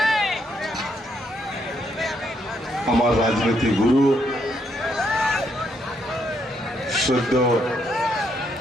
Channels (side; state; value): both; normal; correlation 0.75